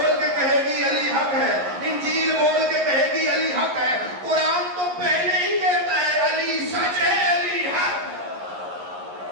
کے کہے گی علی حق ہے، انجیل بول کے کہے گی علی حق ہے، قرآن تو پہلے ہی کہتا ہے علی سچ ہے، علی حق۔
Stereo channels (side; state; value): left; late; 11 ms